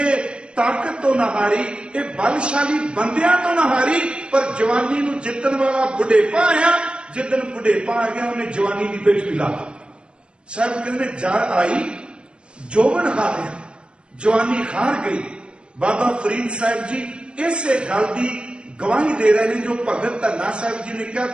ताकत तो ना हारी, ये बलशाली बंदियां तो ना हारी, पर जवानी नू जितन वाला बुढ़ेपा आया। जिदन बुढ़ेपा आ गया उन्हें जवानी की पेट मिला। साहब कहते जर आई जोबन हारिया, जवानी हार गई। बाबा फरीद साहब जी इसे गल की गवाही दे रहे हैं जो भगत धन्ना साहब जी ने कहा,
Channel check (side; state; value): left; late; 0.055 ms